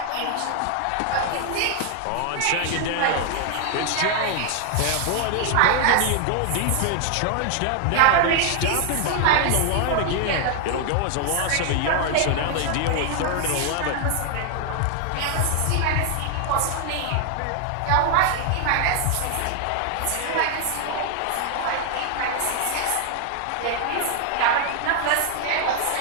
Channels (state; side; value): different; both; correlation 0.00